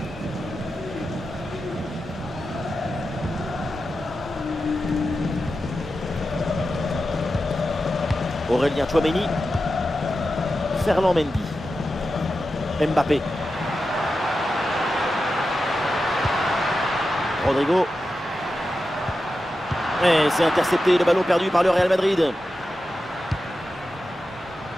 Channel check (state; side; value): normal; both; correlation 0.91